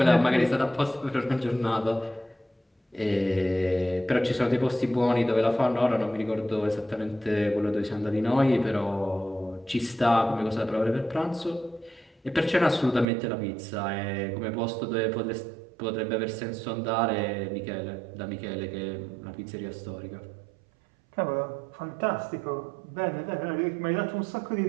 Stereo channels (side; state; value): left; drops out; at 13.1 s